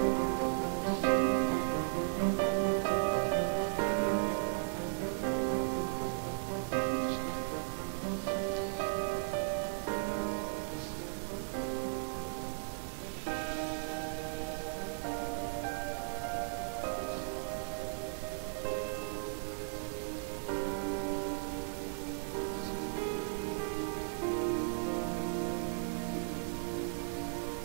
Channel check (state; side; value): silent; left; digital silence